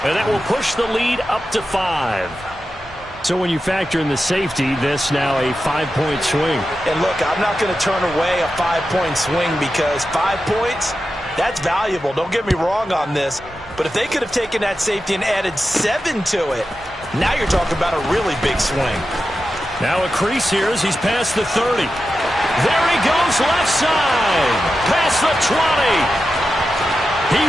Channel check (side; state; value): both; normal; correlation 0.91